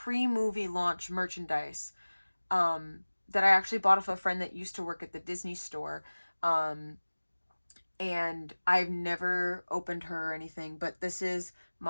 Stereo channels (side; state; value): both; inverted; correlation -1.00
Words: launch merchandise that I actually bought off a friend that used to work at the Disney Store. And I've never opened her or anything, but this is